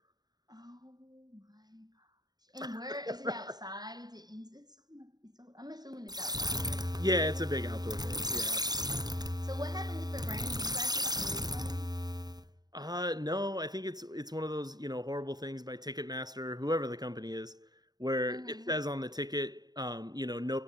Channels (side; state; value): left; late; 0.19 ms